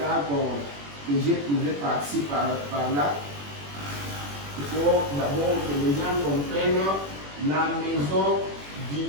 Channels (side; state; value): left; late; 21 ms